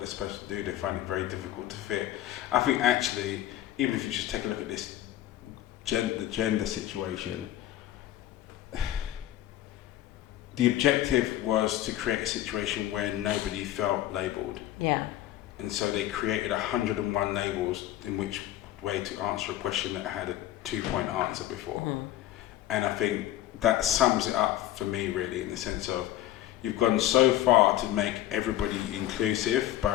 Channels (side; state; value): right; quieter; 13.5 dB